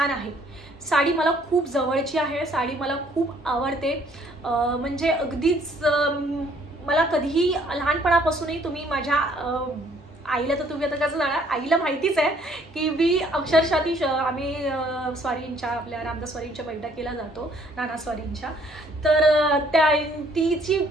आहे. साडी मला खूप जवळची आहे, साडी मला खूप आवडते. म्हणजे अगदीच मला कधीही लहानपणापासूनही तुम्ही माझ्या आईला, तर तुम्ही आता कसं जाणार, आईला माहितीच आहे की मी अक्षरशः आम्ही स्वारींच्या, आपल्या रामदास स्वारींच्या बैठकीला जातो, नाना स्वारींच्या. तर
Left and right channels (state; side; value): normal; both; correlation 0.62